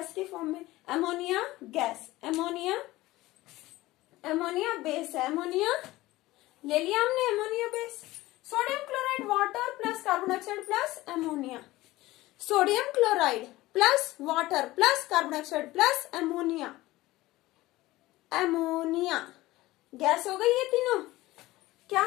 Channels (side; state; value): right; quieter; 18.1 dB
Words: के फॉर्म में, ammonia gas, ammonia, ammonia base है, एमोनिया ले लिया हमने, ammonia base. Sodium chloride water plus carbon dioxide plus ammonia, sodium chloride plus water plus carbon dioxide plus ammonia, ammonia gas हो गई। ये तीनों क्या